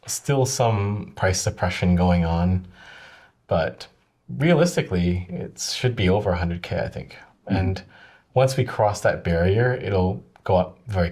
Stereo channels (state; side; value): identical; both; correlation 1.00